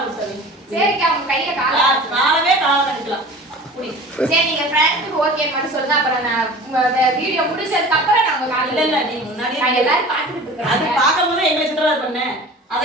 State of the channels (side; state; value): both; normal; correlation 0.40